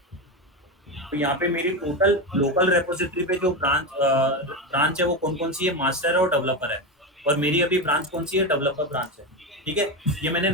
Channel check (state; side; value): normal; both; correlation 0.15